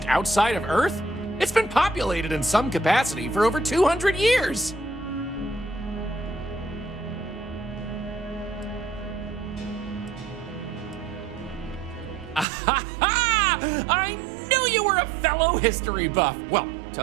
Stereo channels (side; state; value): left; drops out; at 12.5 s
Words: outside of Earth? It's been populated in some capacity for over 200 years. I knew you were a fellow history buff. Well,